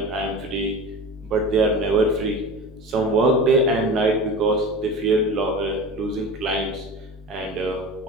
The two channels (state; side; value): normal; both; correlation 0.32